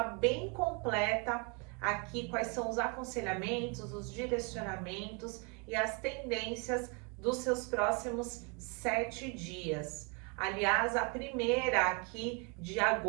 bem completa aqui quais são os aconselhamentos, os direcionamentos e as tendências dos seus próximos 7 dias. Aliás, a primeira aqui de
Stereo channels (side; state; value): left; quieter; 33.3 dB